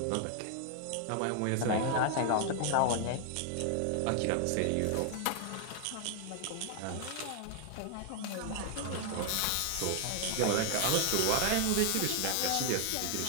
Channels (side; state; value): both; different; correlation 0.00